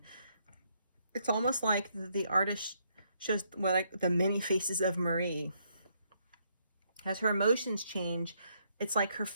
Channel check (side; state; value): both; inverted; correlation -0.74